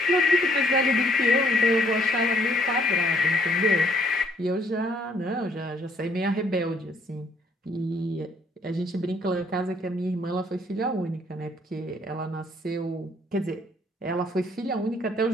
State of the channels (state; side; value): normal; both; correlation 0.66